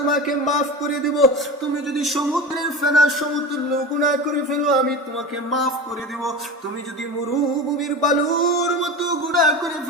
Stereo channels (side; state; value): both; normal; correlation 0.28